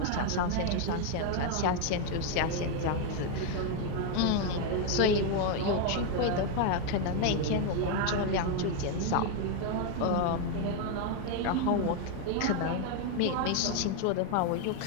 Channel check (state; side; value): different; both; correlation 0.01